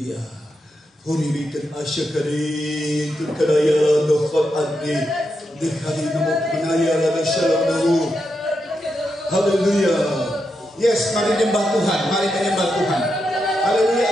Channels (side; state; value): both; normal; correlation 0.85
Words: Huribikan asyakarin turkadaya dokhal adni dekali nomor penaya lada shalom nahu. Haleluya. Yes, mari menyembah Tuhan, mari menyembah Tuhan.